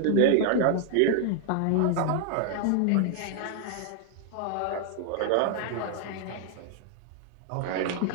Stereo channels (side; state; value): both; different; correlation 0.00